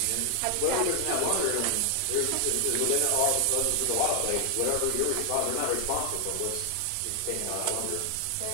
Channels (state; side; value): different; both; correlation 0.00